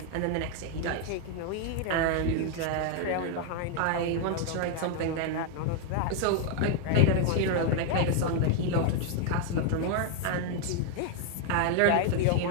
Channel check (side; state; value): both; different; correlation 0.00